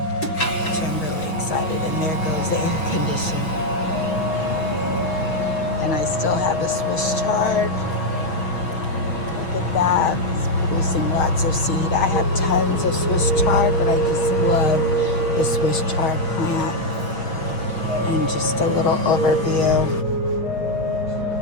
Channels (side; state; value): right; late; 6.4 ms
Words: And there goes the air conditioner. And I still have a Swiss chard. Look at that, it's producing lots of seed. I have tons of Swiss chard, but I just love the Swiss chard plant. And just a little overview.